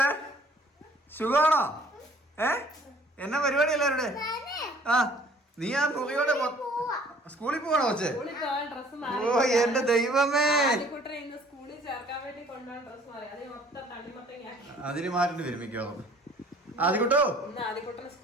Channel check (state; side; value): normal; both; correlation 0.55